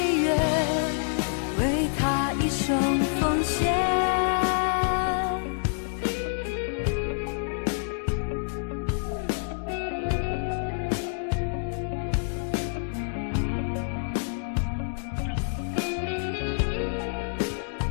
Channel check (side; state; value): right; silent; digital silence